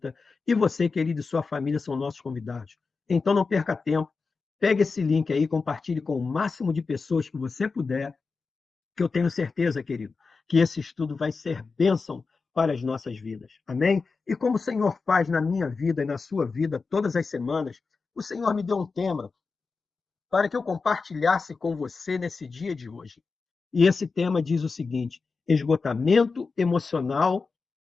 E você, querido, e sua família são nossos convidados. Então não perca tempo, pegue esse link aí, compartilhe com o máximo de pessoas que você puder, que eu tenho certeza, querido, que esse estudo vai ser bênção para as nossas vidas. Amém? E como o Senhor faz na minha vida e na sua vida todas as semanas, o Senhor me deu um tema para que eu compartilhasse com você nesse dia de hoje. E esse tema diz o seguinte: esgotamento emocional,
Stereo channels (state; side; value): quieter; right; 4.5 dB